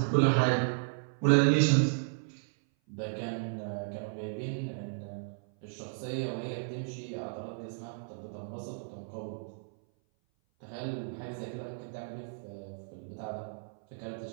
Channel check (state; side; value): silent; left; 55 dB below the other